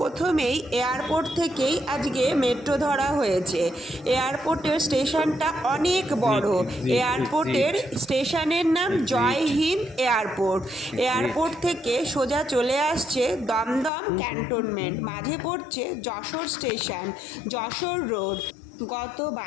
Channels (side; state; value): right; drops out; at 13.9 s